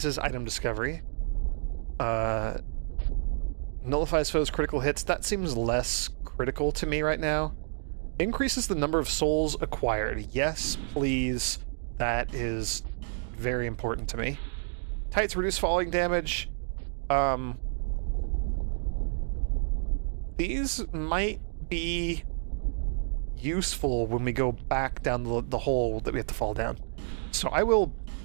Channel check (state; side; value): silent; left; digital silence